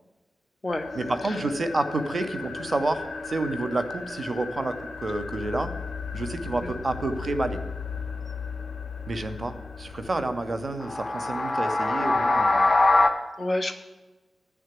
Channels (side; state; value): both; normal; correlation 0.92